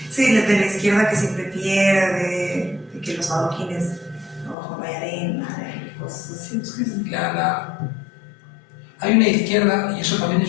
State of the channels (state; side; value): drops out; right; at 4.5 s